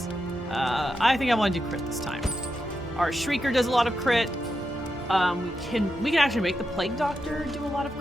I think I want to do crit this time. Our Shrieker does a lot of crit. We can actually make the Plague Doctor do a lot of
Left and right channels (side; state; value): both; normal; correlation 0.86